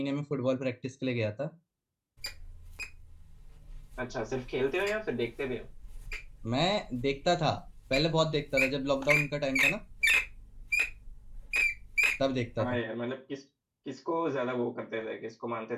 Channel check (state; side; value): identical; both; correlation 1.00